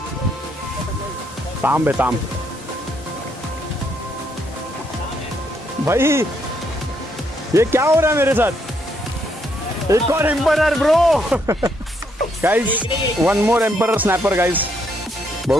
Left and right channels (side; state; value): both; normal; correlation 0.74